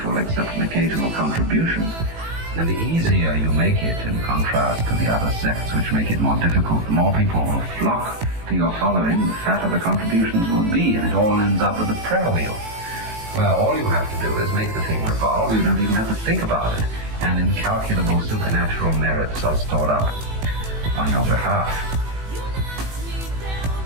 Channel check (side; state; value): left; late; 18 ms